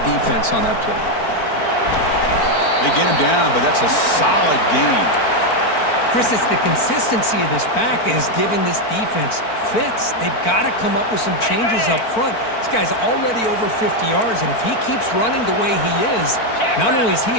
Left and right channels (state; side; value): late; right; 4.5 ms